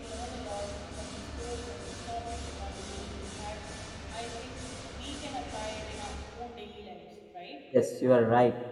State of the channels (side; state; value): both; identical; correlation 1.00